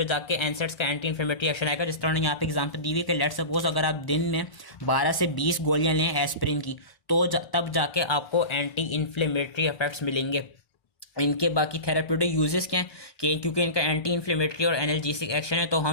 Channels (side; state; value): right; late; 1.0 ms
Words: जाके एनसेट्स का एंटी इन्फ्लेमेटरी एक्शन आएगा। जिस तरह यहाँ पे एग्जांपल दी हुई है कि लेट्स सपोज अगर आप दिन में 12 से 20 गोलियां लें एस्पिरिन की तो तब जाके आपको एंटी इन्फ्लेमेटरी इफेक्ट्स मिलेंगे। इनके बाकी थेराप्यूटिक यूजेस क्या हैं कि क्योंकि इनका एंटी इन्फ्लेमेटरी और एनाल्जेसिक एक्शन है तो